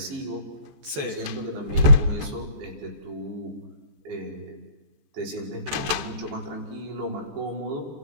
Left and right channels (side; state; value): left; late; 14 ms